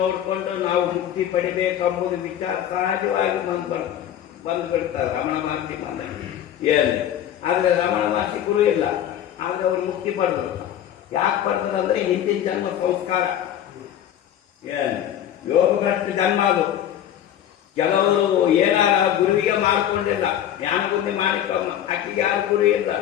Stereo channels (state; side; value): quieter; right; 10.8 dB